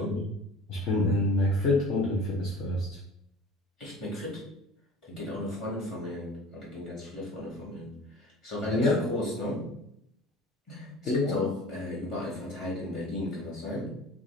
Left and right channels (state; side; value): normal; both; correlation 0.43